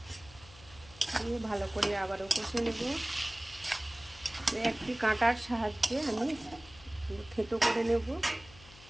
দিয়ে ভালো করে আবারও কষে নেব। তো একটি কাঁটার সাহায্যে আমি থেতো করে নেব।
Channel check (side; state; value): left; noise; hum, 21 dB below the sound